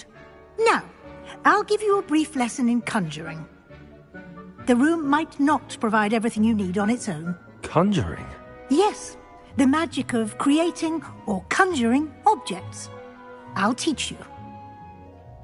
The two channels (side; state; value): both; identical; correlation 1.00